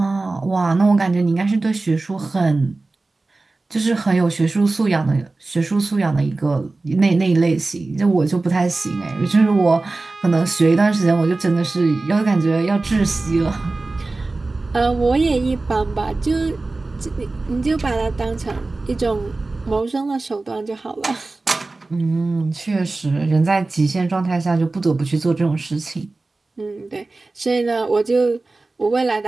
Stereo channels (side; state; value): left; quieter; 3.3 dB